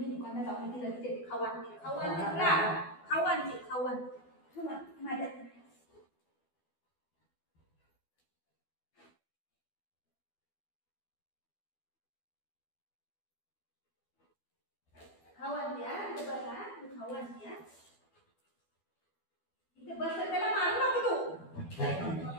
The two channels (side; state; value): right; late; 12 ms